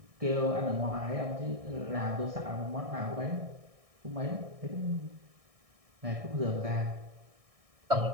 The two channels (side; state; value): left; late; 1.6 ms